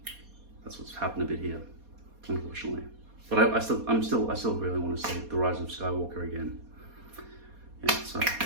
That's what's happened a bit here, unfortunately. But I still really want to see The Rise of Skywalker again. Yeah, so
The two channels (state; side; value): late; left; 4.2 ms